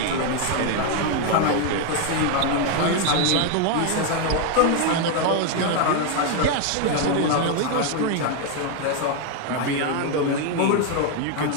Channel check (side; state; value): both; different; correlation 0.01